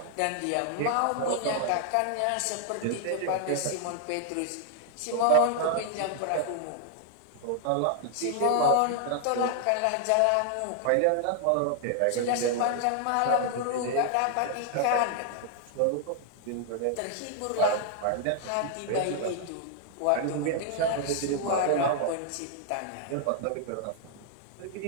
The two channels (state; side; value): different; both; correlation 0.00